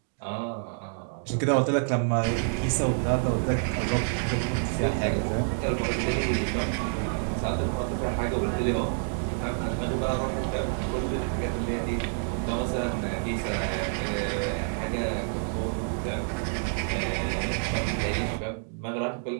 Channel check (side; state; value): left; silent; digital silence